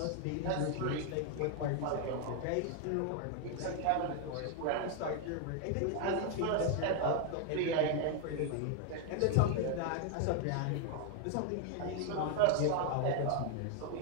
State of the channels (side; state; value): both; different; correlation 0.00